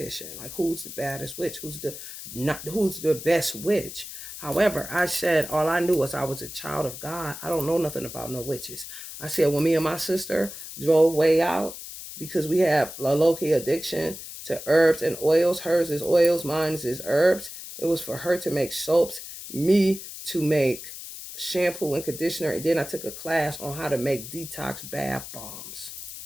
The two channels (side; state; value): left; noise; hiss, 11 dB below the sound